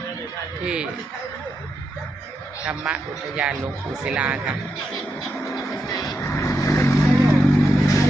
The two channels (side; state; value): both; normal; correlation 0.84